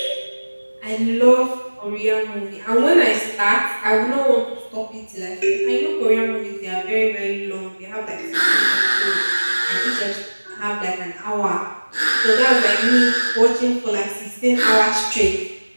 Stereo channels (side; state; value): both; inverted; correlation -1.00